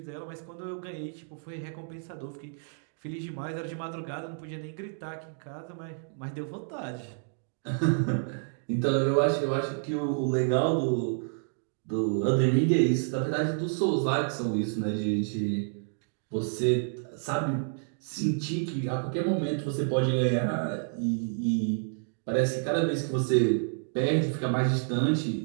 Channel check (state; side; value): silent; left; digital silence